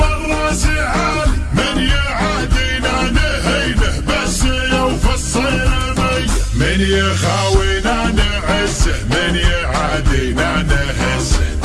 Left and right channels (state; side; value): identical; both; correlation 1.00